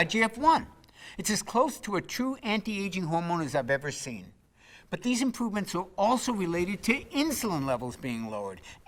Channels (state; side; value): identical; both; correlation 1.00